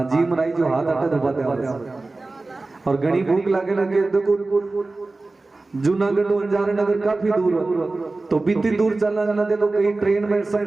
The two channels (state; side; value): quieter; left; 3.3 dB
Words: जी मराई जो हाथ अटे दबाते और घनी भूख लागे लगे देखो जूनागढ़ अंजार नगर काफी दूर हो तो बीती दूर चलना जाना दे तो कहीं ट्रेन में